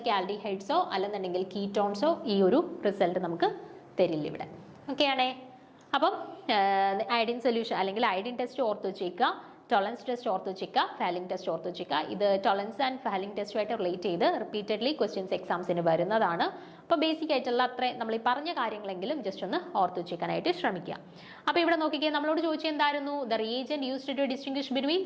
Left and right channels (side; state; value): both; identical; correlation 1.00